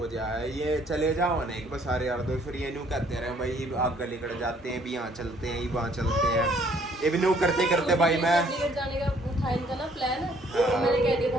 जाए, ये चले जाओ ना एक बार सारे यार दो, फिर ये न्यू कहते रहे भाई आग निकल जाते हैं, भी यहाँ चलते हैं वहाँ चलते हैं, ये भी न्यू करते करते भाई मैं जाने का था इनका ना प्लान, मैंने कह दिया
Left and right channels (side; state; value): both; normal; correlation 0.62